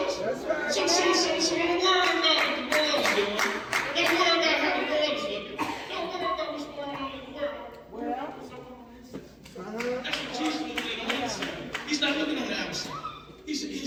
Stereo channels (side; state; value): both; identical; correlation 1.00